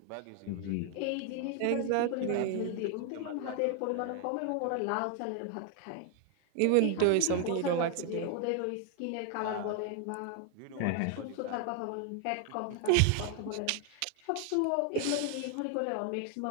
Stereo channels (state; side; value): different; both; correlation 0.00